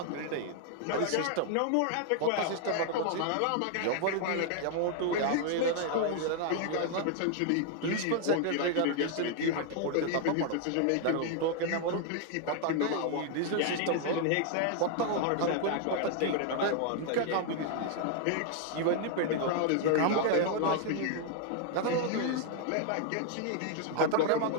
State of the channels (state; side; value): different; both; correlation 0.00